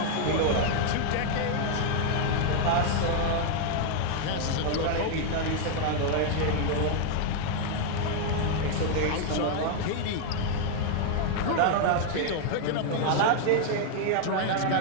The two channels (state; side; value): different; both; correlation 0.00